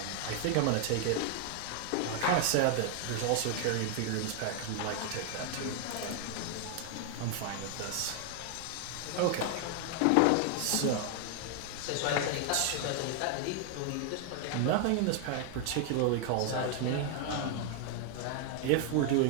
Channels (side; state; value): both; different; correlation 0.00